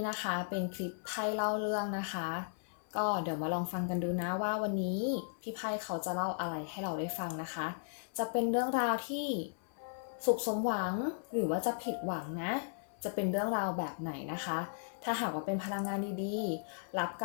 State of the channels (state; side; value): silent; right; 54 dB below the other